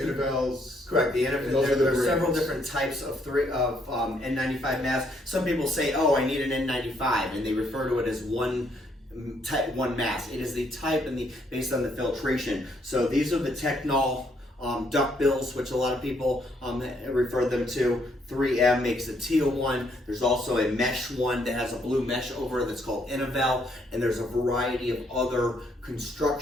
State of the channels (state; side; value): normal; both; correlation 0.71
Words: Correct. Those are There are the several brands. different types of N95 masks. Some people say, "Oh, I need an N95," and they refer to it as one mask. It is the type and based on the filtration. So these are the Technol duck bills, which a lot of people refer them to. 3M makes a teal one. There's also a mesh one that has a blue mesh over it that's called Innovel, and there's a variety of other